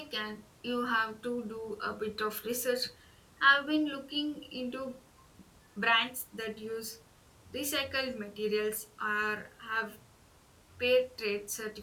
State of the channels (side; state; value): both; identical; correlation 1.00